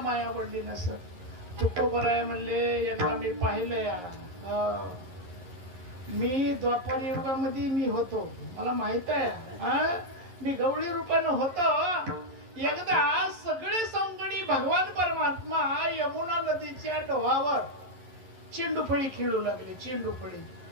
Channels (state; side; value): late; left; 11 ms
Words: आवडली नसत? तुकोबराय म्हणले, एकदा मी पाहिलंय, मी द्वापर युगामध्ये मी होतो, मला माहित आहे, मी गवळी रूपानं होतो. एकदा सगळे सौंगडी भगवान परमात्मा यमुना नदीच्या डोहावर चेंडूफळी खेळू लागले.